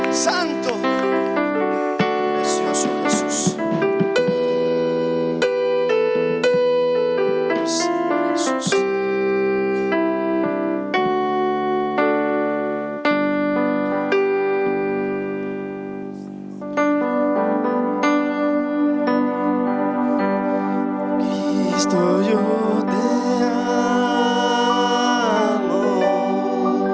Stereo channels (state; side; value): identical; both; correlation 1.00